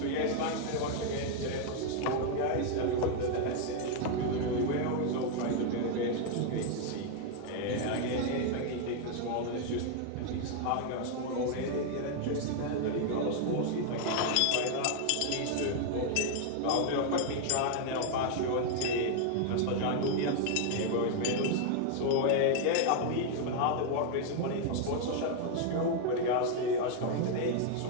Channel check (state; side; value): different; both; correlation 0.00